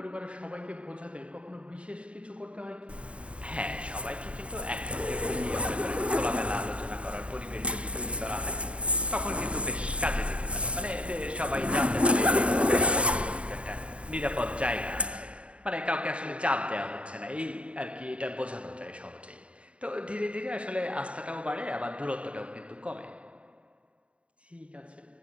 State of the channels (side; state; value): left; late; 0.061 ms